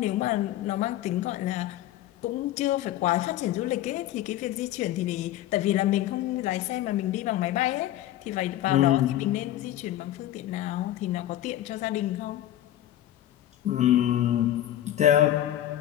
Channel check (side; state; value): right; quieter; 13.2 dB